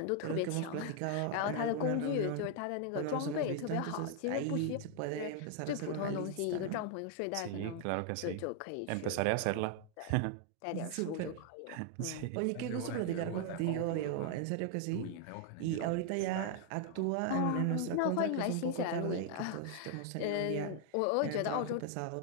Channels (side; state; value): both; different; correlation 0.00